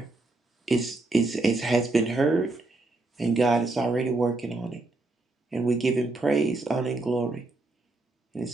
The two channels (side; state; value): left; quieter; 3.1 dB